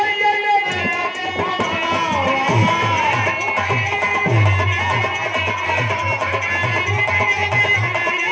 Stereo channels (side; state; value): both; identical; correlation 1.00